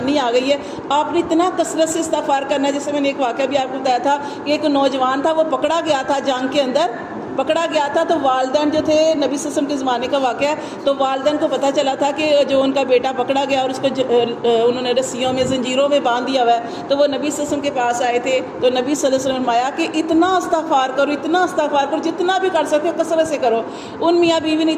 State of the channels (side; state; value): both; identical; correlation 1.00